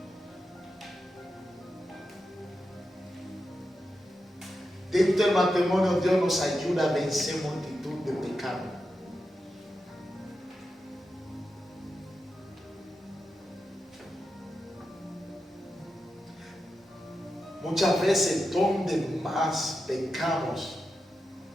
Dentro del matrimonio Dios nos ayuda a vencer multitud de pecados. Muchas veces donde más pecamos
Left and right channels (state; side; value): normal; both; correlation 0.89